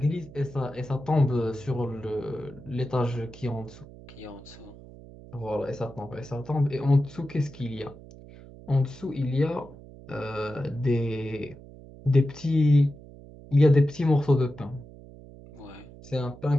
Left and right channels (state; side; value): noise; right; hum, 18 dB below the sound